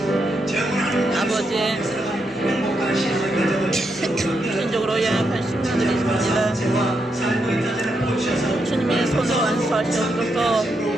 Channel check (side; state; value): both; normal; correlation 0.82